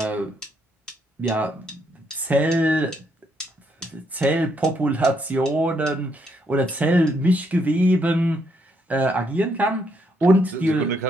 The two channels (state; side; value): normal; both; correlation 0.74